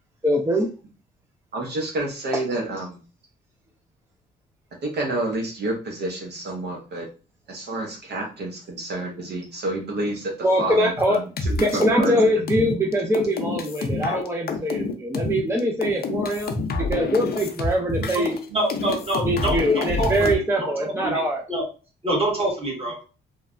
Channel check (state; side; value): normal; both; correlation 0.55